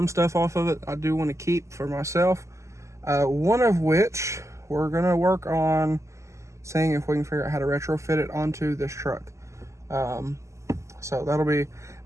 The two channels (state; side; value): late; left; 0.14 ms